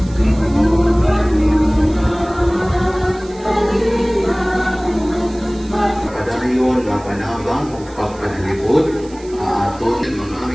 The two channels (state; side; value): noise; right; hiss, 23 dB below the sound